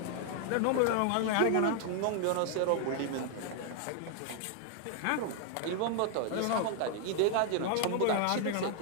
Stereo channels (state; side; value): different; both; correlation 0.00